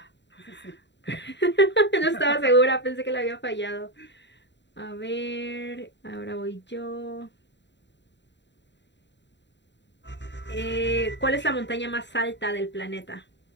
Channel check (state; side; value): late; right; 0.52 ms